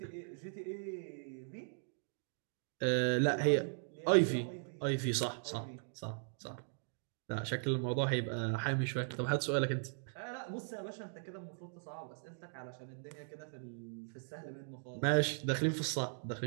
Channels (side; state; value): left; silent; digital silence